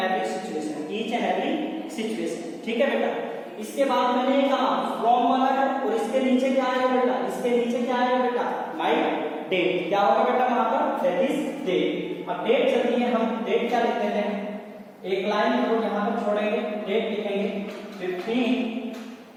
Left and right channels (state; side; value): identical; both; correlation 1.00